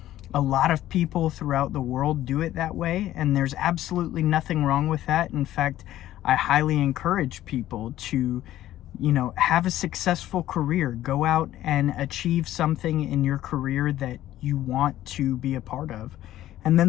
a lot of people throughout the world do it that way, and there's absolutely nothing wrong with that. In fact, I highly encourage people to have a successful career. Go out and achieve something in your career that you want to be a part of. And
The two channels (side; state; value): right; quieter; 13.6 dB